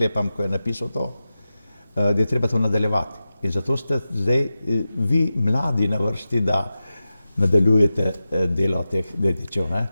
ko je napisal to, da je treba to nadaljevati. In zato ste zdaj vi mladi na vrsti, da nadaljujete delo teh dedičev. Ne?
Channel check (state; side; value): inverted; both; correlation -0.93